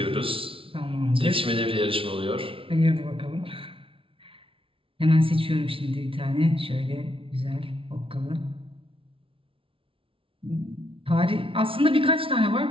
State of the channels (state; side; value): late; left; 0.26 ms